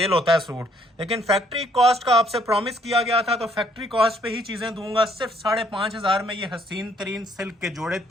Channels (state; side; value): normal; both; correlation 0.66